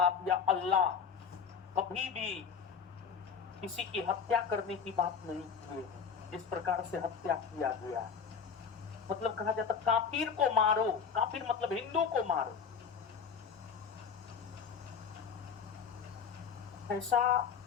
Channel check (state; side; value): quieter; right; 6.4 dB